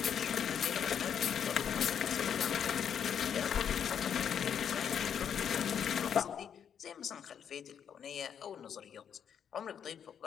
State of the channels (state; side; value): quieter; right; 8.2 dB